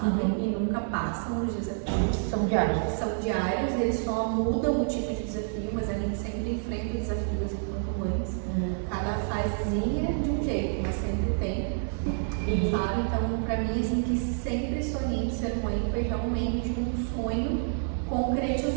e nunca passam os desafios. São diários. São diários, eles só mudam o tipo de desafio, mas a gente sempre enfrenta desafios enquanto mães. Cada fasezinha de um jeito, mas sempre tem. Sabe? Então, pra mim, assim, que sempre sonhei em ser mãe foi realmente um sonho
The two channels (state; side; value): silent; left; digital silence